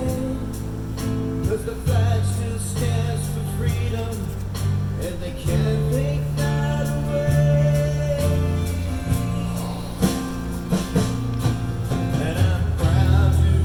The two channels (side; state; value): both; identical; correlation 1.00